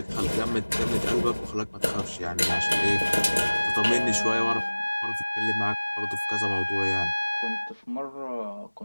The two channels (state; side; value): inverted; both; correlation -1.00